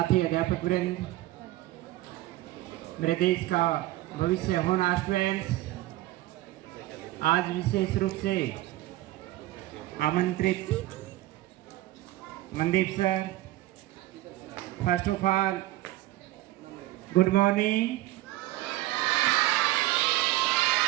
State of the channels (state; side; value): quieter; left; 16.7 dB